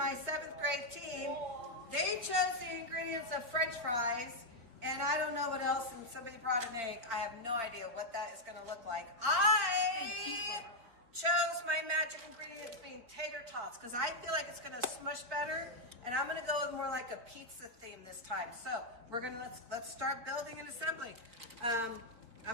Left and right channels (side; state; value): left; late; 4.3 ms